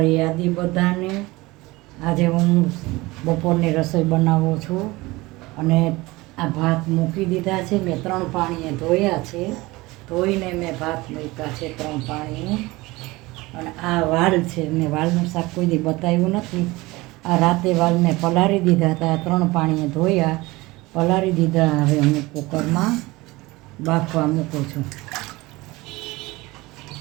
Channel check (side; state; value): left; quieter; 21.2 dB